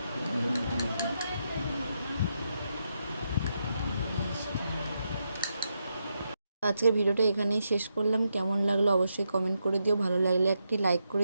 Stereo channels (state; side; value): inverted; both; correlation -0.83